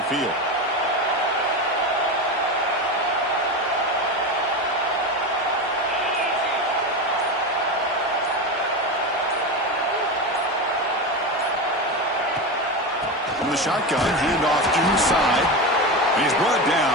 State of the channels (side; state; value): both; normal; correlation 0.20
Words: field. From the shotgun, handoff inside. He's brought